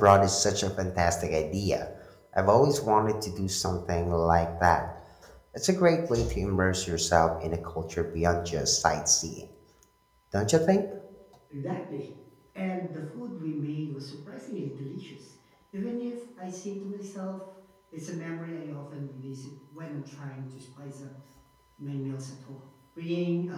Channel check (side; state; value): both; identical; correlation 1.00